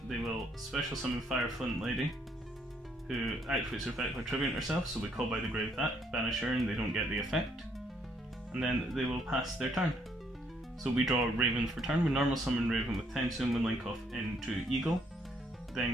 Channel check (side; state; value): both; normal; correlation 0.69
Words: they will special summon Fire Flint Lady, who activates her effect by tributing herself, so we call by the grave that, banish her and they don't get the effect. And then they will pass their turn. So we draw Raven for turn, we normal summon Raven with Tensu and we link off into Eagle.